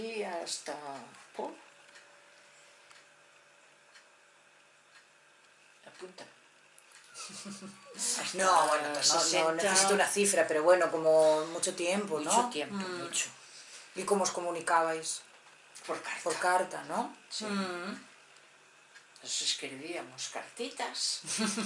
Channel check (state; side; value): identical; both; correlation 1.00